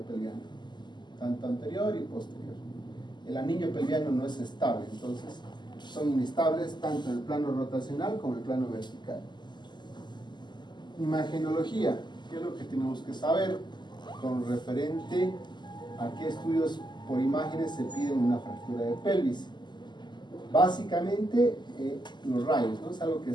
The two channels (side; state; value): right; late; 0.21 ms